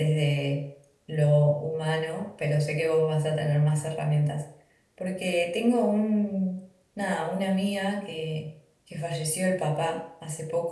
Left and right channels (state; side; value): identical; both; correlation 1.00